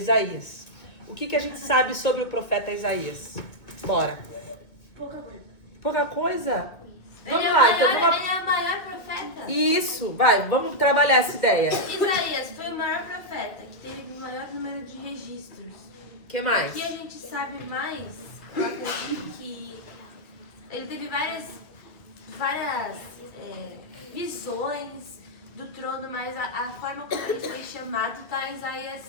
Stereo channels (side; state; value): right; late; 2.0 ms